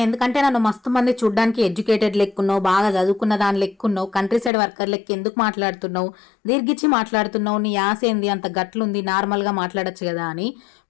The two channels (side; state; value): right; drops out; at 4.5 s